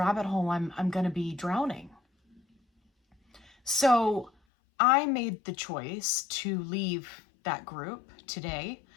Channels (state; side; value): drops out; right; at 4.3 s